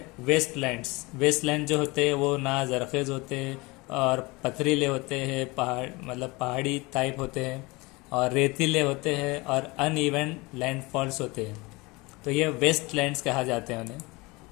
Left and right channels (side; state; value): right; quieter; 24.1 dB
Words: वेस्टलैंड्स. वेस्टलैंड जो होते हैं वो ना जरखेज़ होते हैं और पथरीले होते हैं, पहाड़ मतलब पहाड़ी टाइप होते हैं, और रेतीले होते हैं और अनइवन लैंडफॉल्स होते हैं. तो ये वेस्टलैंड्स कहा जाते हैं उन्हें.